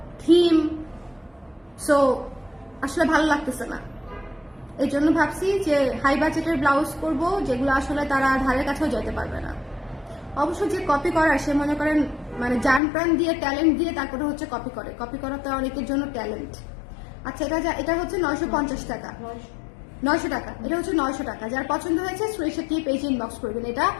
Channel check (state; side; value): drops out; right; at 12.8 s